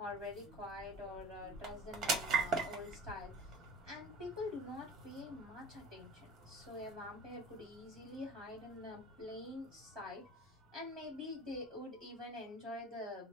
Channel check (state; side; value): normal; both; correlation 0.41